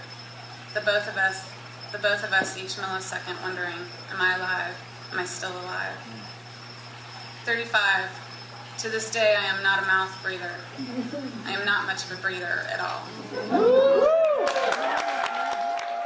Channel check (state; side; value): identical; both; correlation 1.00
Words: The both of us each millisecond wondering, am I alive? Am I still alive? 35. To this day, I am not a mouth breather. I am not much of a breather at all.